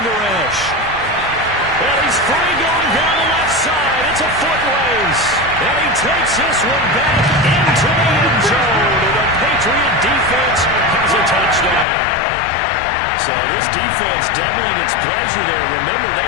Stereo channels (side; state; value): right; drops out; at 11.9 s